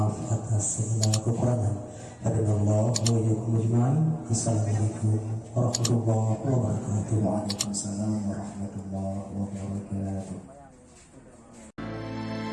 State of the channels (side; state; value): both; identical; correlation 1.00